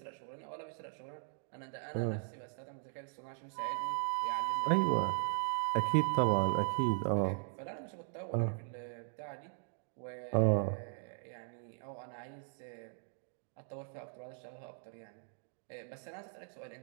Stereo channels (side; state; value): left; silent; 52 dB below the other